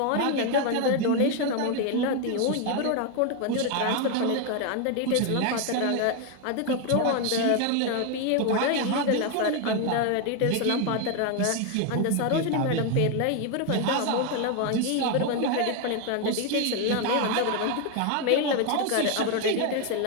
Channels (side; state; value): both; different; correlation 0.01